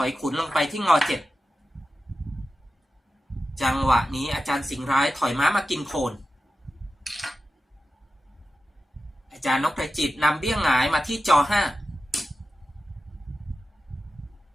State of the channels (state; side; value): normal; both; correlation 0.92